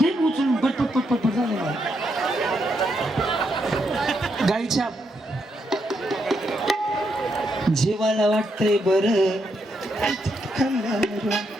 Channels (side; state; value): both; normal; correlation 0.79